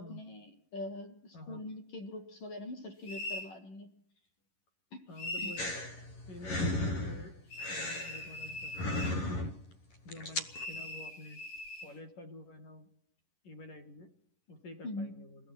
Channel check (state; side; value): late; right; 11 ms